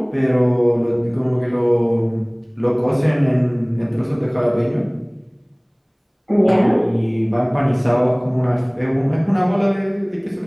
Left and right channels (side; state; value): both; identical; correlation 1.00